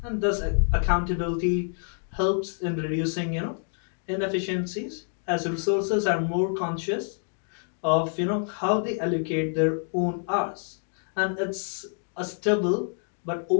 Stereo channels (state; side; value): silent; right; 58 dB below the other